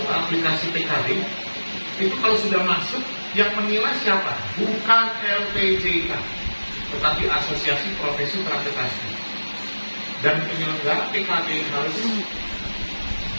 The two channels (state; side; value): inverted; both; correlation -1.00